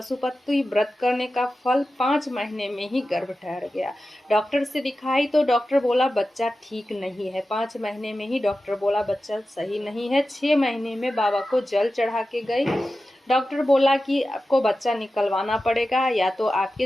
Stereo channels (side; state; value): both; normal; correlation 0.93